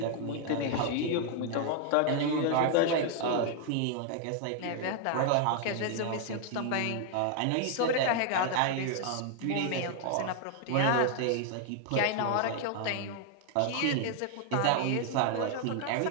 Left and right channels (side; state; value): both; different; correlation 0.00